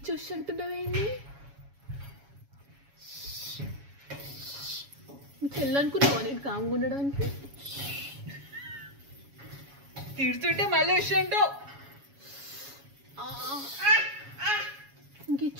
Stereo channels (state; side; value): late; left; 7.2 ms